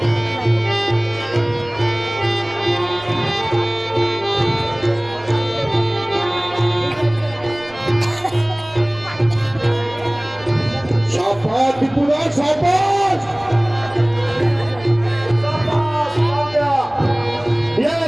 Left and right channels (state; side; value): noise; right; rumble, 23 dB below the sound